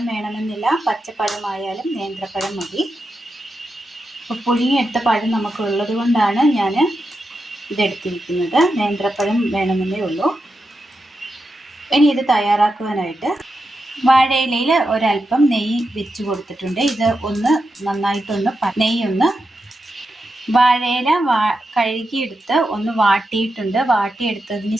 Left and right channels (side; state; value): both; normal; correlation 0.88